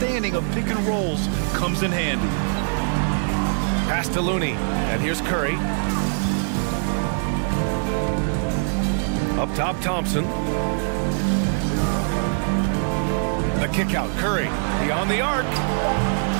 of pick and rolls comes in handy. Pass to Looney. And here's Curry. Up top, Thompson. The kick out, Curry. Beyond the arc.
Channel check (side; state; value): left; silent; digital silence